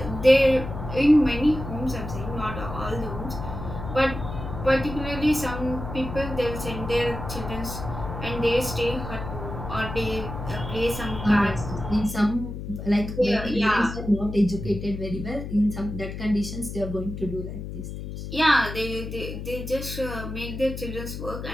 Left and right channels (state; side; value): noise; left; hum, 8 dB below the sound